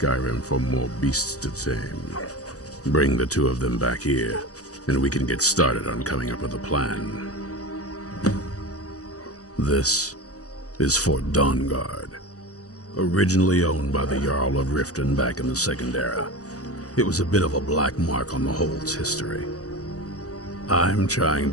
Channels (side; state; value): right; late; 0.67 ms